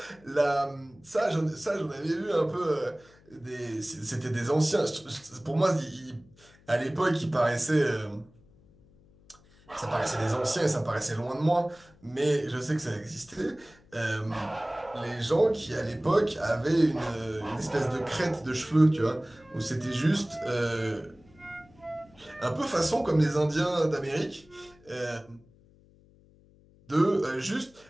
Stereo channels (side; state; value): left; noise; hum, 28 dB below the sound